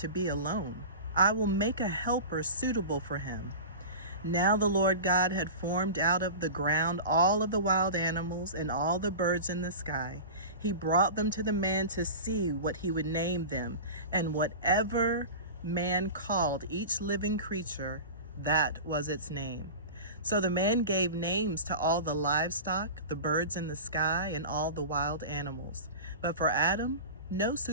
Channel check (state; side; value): inverted; both; correlation -0.31